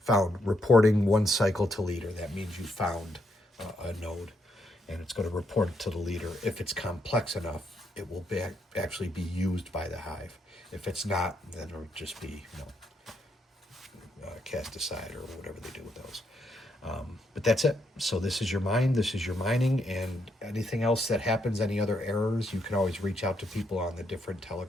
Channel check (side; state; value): both; normal; correlation 0.77